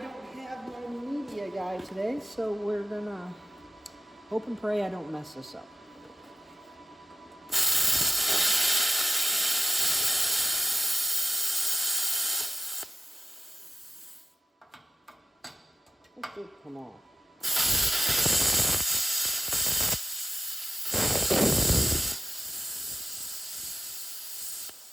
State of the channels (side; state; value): both; normal; correlation 0.96